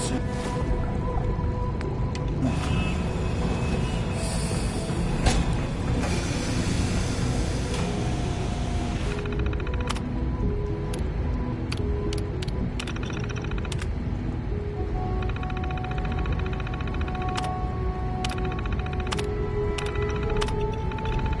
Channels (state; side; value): identical; both; correlation 1.00